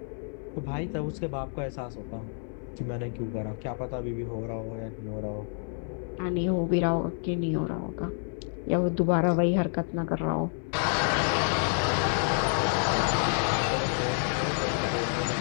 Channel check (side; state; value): right; silent; 59 dB below the other